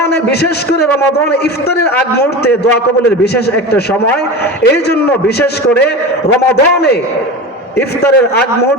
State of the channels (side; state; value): both; normal; correlation 0.28